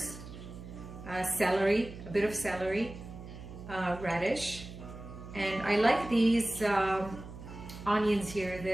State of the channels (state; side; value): noise; right; hum, 13 dB below the sound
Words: celery, a bit of celery, radish, and I like these onions here.